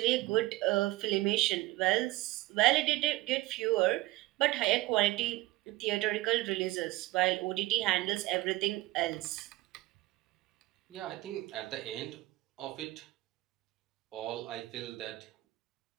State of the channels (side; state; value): left; quieter; 19.0 dB